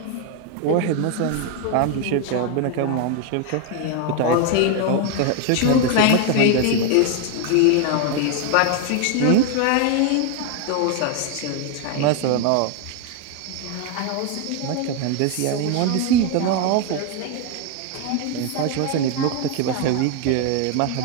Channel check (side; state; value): both; different; correlation 0.01